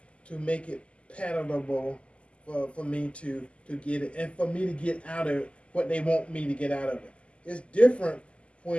to make it palatable for me to get it, and for me to get out of it what they want me to get out of it. It's different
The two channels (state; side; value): late; right; 0.056 ms